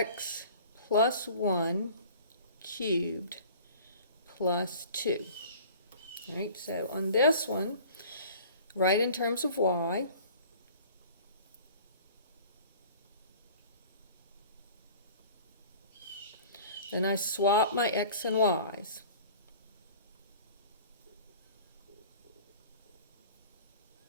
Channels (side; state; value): both; inverted; correlation -0.45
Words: plus 1 cubed plus 2. All right, so on this one, write in terms of y. Then I swap my x and y's.